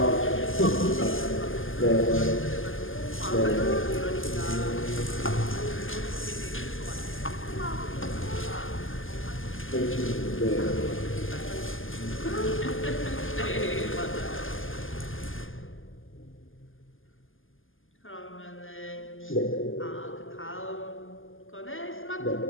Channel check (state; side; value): late; right; 0.59 ms